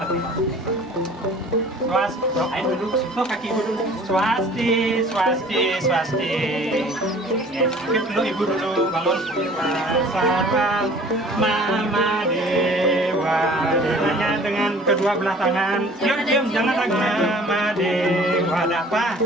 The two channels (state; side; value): normal; both; correlation 0.49